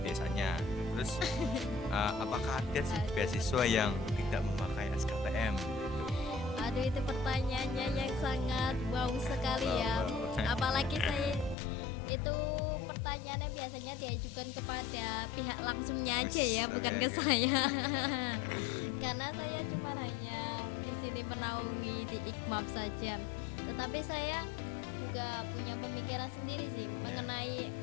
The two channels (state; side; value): drops out; right; at 11.6 s